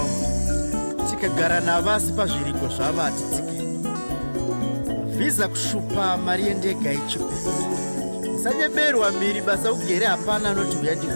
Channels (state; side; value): inverted; both; correlation -1.00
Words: tikagara navasi pazviriko zvavo hatitsike, vhiza kushupa, mari yendega ichipe. Musanyemerwa mhiri, basa ugere hapana anoti uya